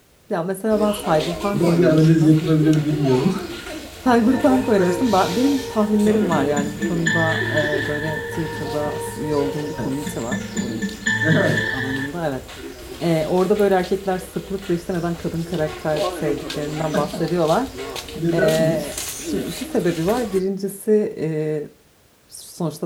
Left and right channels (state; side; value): identical; both; correlation 1.00